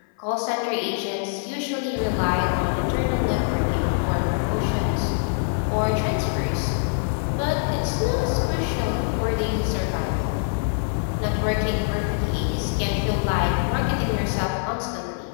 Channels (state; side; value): silent; right; 56 dB below the other